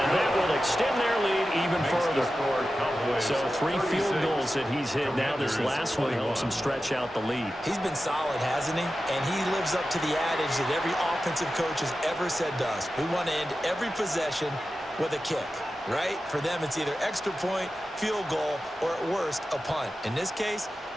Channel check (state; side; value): normal; both; correlation 0.93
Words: that will extend their lead even further. So 3 field goals that he's hit. Now this last one helps him stretch out the lead. He's been solid, hasn't he? And he lives up to the adage that every offensive coach has ever said to us. We want to end every possession with a kick, right? For them, it's either extra point, field goal, or at worst, a punt. In this case,